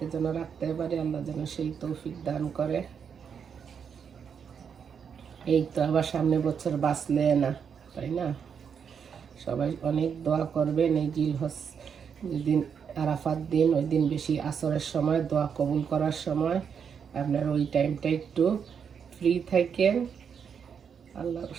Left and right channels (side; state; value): left; quieter; 7.0 dB